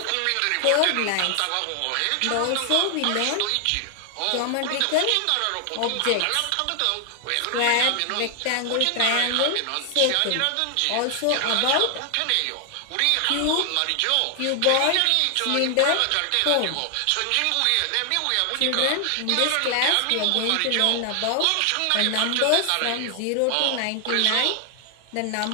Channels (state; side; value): different; both; correlation 0.00